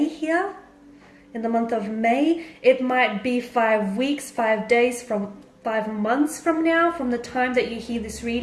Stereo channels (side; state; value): both; identical; correlation 1.00